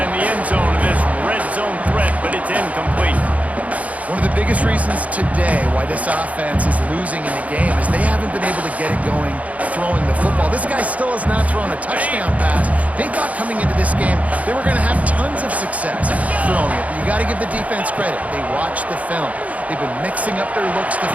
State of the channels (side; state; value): left; late; 0.069 ms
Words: the end zone of this red zone threat, but it's incomplete. One of the biggest reasons today why this offense is losing in the game is they haven't been able to get it going throwing the football. This guy still has not thrown a touchdown pass. They thought coming into this game they were going to have tons of success throwing it. You got to give the defense credit. They watched the film. They've been mixing up their looks